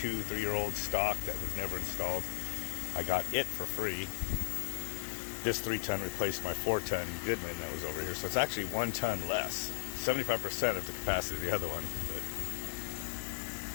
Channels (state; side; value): silent; right; digital silence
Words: stock that was never installed. I got it for free. This 3-ton replaced my 4-ton Goodman that was over here. So it's actually 1 ton less. 75% of the capacity of the other one. But